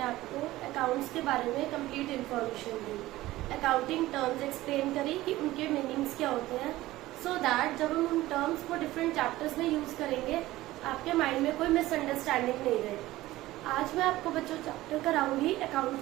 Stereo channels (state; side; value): quieter; left; 16.9 dB